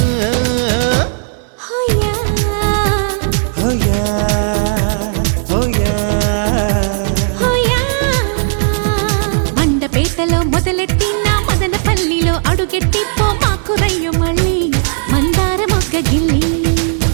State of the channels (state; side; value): silent; left; digital silence